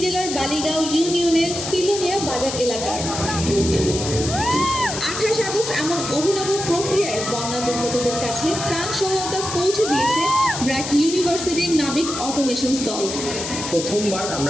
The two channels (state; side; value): noise; left; hiss, 6 dB below the sound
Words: জেলার বালিগাঁও ইউনিয়নের সিলোনিয়া বাজার এলাকার। 28 আগস্ট এমন অভিনব প্রক্রিয়ায় বন্যা দুর্গতদের কাছে ত্রাণ সহায়তা পৌঁছে দিয়েছে ব্র্যাক ইউনিভার্সিটির নাবিক অটোমেশনস দল। প্রথমবার